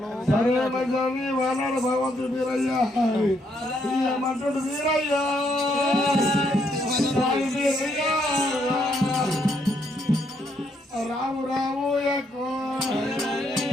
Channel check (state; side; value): normal; both; correlation 0.74